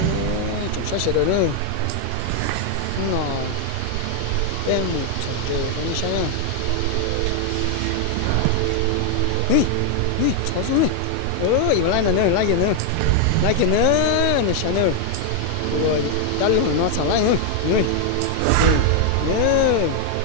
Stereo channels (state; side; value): different; both; correlation 0.00